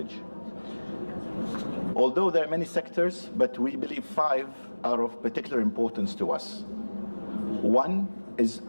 Although there are many sectors, but we believe 5 are of particular importance to us. One is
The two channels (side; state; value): both; inverted; correlation -1.00